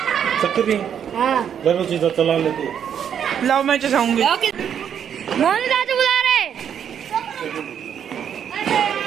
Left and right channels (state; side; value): quieter; left; 8.6 dB